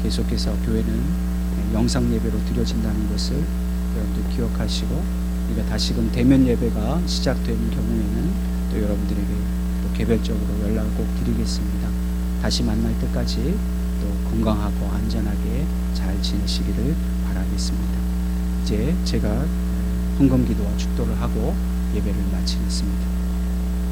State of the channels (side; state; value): both; identical; correlation 1.00